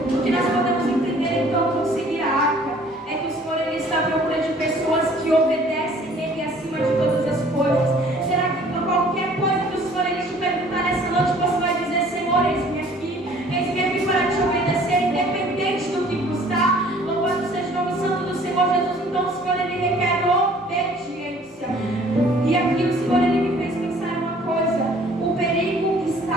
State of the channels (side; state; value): both; normal; correlation 0.54